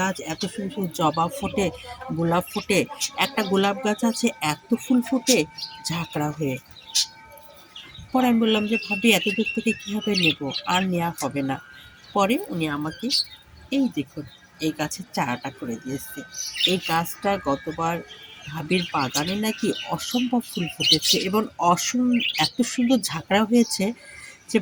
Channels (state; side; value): identical; both; correlation 1.00